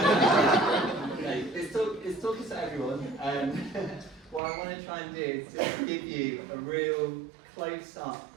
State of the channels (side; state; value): left; drops out; at 4.4 s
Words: Okay, this talk is to everyone. What I want to try and do is just give you a real close-up